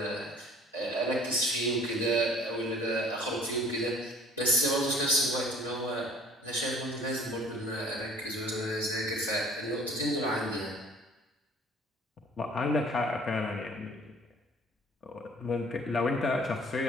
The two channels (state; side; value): normal; both; correlation 0.52